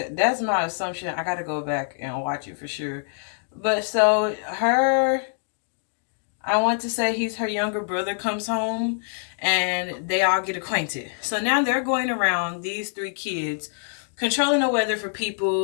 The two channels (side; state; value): right; silent; digital silence